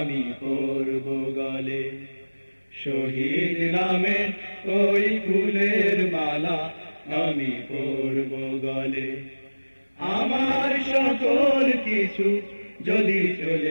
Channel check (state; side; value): inverted; both; correlation -1.00